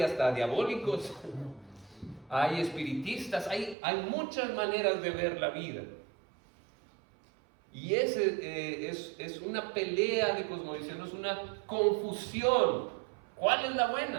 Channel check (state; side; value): drops out; left; at 3.8 s